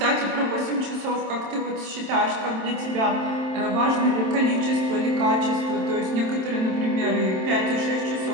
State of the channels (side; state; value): left; late; 27 ms